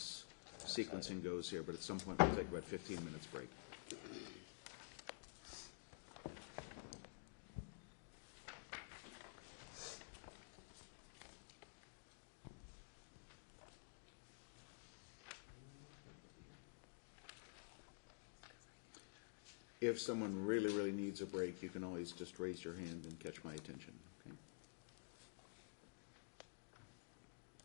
sequencing goes here, but at some point we'll take about 15 minutes break. If someone really, really needs a break, you can always just raise your hand and catch my attention, okay?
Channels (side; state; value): right; silent; digital silence